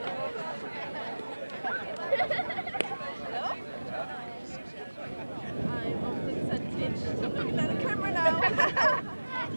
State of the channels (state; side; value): inverted; both; correlation -1.00